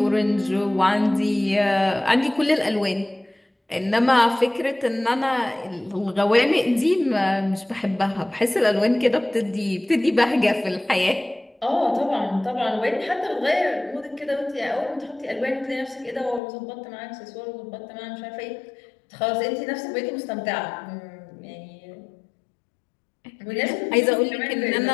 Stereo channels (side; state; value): right; drops out; at 16.4 s